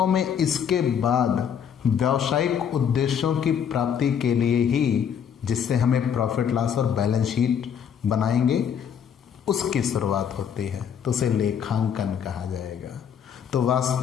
में इसके बाद व्यावसायिक उद्देश्यों की प्राप्ति के लिए ही, जिससे हमें प्रॉफिट लॉस और बैलेंस शीट बनाएंगे, उसकी शुरुआत होती है, तो उसे लेखांकन कहा जाएगा। तो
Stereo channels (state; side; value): quieter; right; 8.1 dB